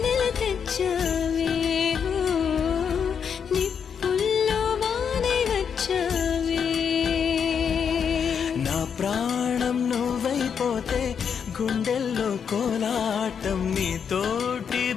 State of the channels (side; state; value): right; quieter; 7.1 dB